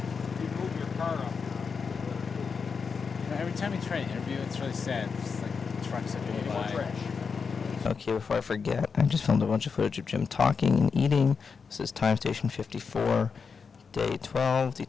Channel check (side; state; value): right; quieter; 5.6 dB